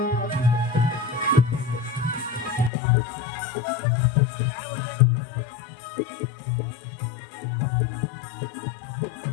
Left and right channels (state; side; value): drops out; right; at 2.7 s